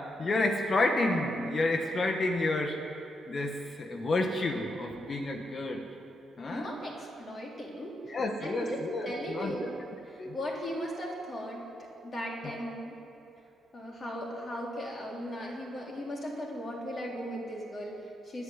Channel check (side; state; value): both; normal; correlation 0.82